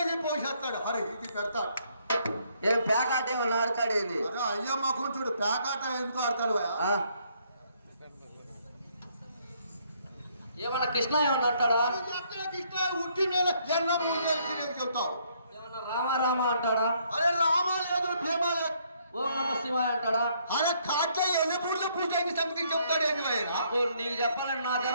పోసేస్తాడు. అరే ఇది పెడతాడు. ఏం పేకాట ఏమన్నా ఆడతాడేది? అరే అయ్యా మాకు చూడు, పేకాట ఎందుకు ఆడతాడు? ఏమన్నా కృష్ణ ఏమన్నా అంటాడా? కృష్ణ ఉట్టి నేల జన్మ చెప్తావు. ఏమన్నా రామ అంటాడా? అరే రామ లేదు, భీమ లేదు. ఓం నమ శివాయ అంటాడా? అరే కాట్ల ఎల్లపూర్లో పూజ సంథింగ్ చెప్తాడు. ఏంటి నీకు చెప్పాలని నా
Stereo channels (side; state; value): both; inverted; correlation -0.69